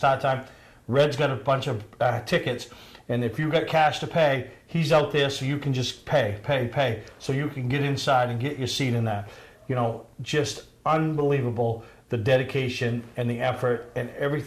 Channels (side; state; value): both; identical; correlation 1.00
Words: time. Red's got a bunch of tickets, and if you've got cash to pay, he's out there so you can just pay, so you can get inside and get your seat in that. You know, just unbelievable, the dedication and the effort and